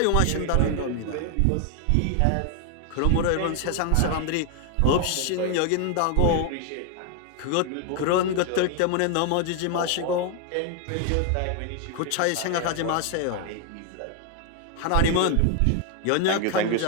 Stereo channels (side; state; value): both; different; correlation 0.01